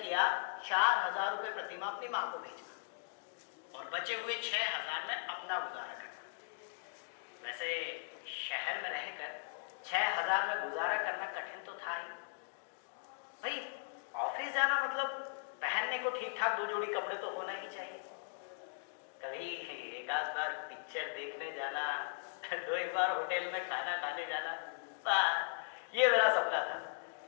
किया 4,000 रुपये प्रति माह अपनी माँ को भेजना और बचे हुए 6,000 में अपना गुजारा करना। वैसे शहर में रहकर 6,000 में गुजारा करना कठिन तो था ही भाई। ऑफिस जाना मतलब पहनने को ठीक ठाक 2 जोड़ी कपड़े तो होना ही चाहिए। कभी एक आध बार पिक्चर देखने जाना, 2 बार होटल में खाना खाने जाना, ये मेरा सपना था।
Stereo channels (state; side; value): silent; right; digital silence